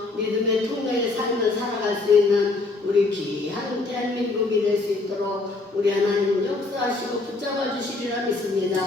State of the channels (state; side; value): quieter; right; 3.4 dB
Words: 믿음의 통로의 삶을 살아갈 수 있는 우리 귀한 대한민국이 될 수 있도록 우리 하나님 역사하시고 붙잡아 주시리라 믿습니다.